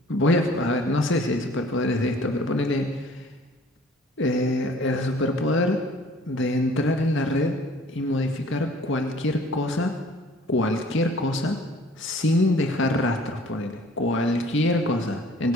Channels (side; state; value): both; normal; correlation 0.53